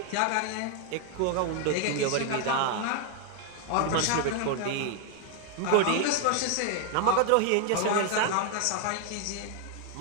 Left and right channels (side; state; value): both; different; correlation 0.00